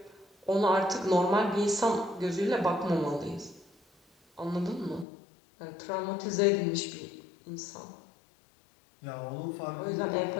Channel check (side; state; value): right; drops out; at 5.1 s